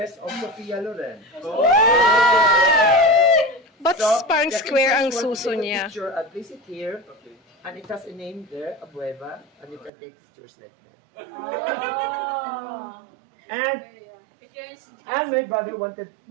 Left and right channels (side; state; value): left; drops out; at 9.9 s